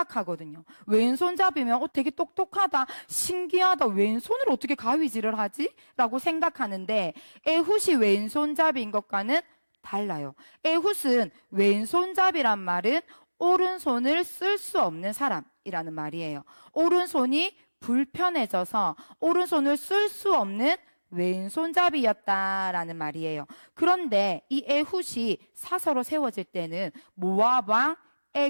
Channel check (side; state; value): both; inverted; correlation -1.00